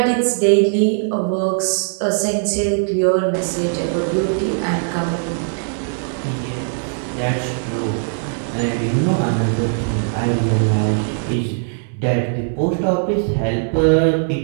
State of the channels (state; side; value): silent; left; 61 dB below the other